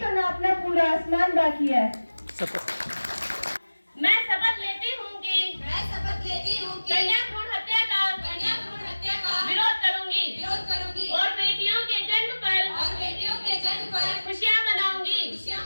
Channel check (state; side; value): inverted; both; correlation -1.00